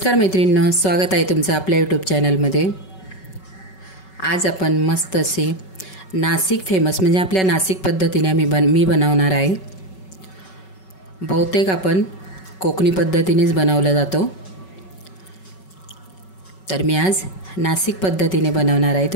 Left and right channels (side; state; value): right; late; 5.3 ms